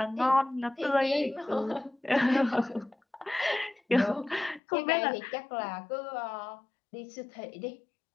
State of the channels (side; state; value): right; drops out; at 4.6 s